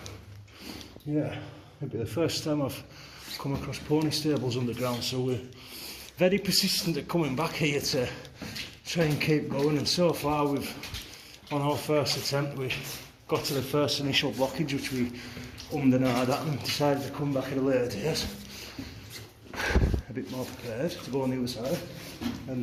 yeah, it'll be the first time I've come across pony stables underground, so we're very persistent at coming back here to try and keep going, and so far on our first attempt we got to the first initial blockage, which we ummed and ahed at and decided to come back at a later date, a bit more prepared to go on the other side.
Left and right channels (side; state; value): both; identical; correlation 1.00